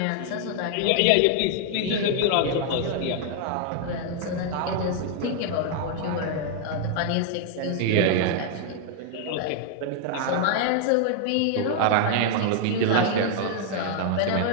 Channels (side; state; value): both; different; correlation 0.00